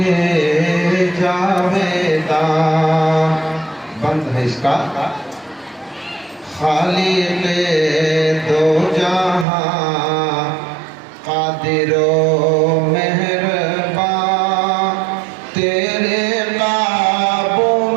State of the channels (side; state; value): left; drops out; at 9.5 s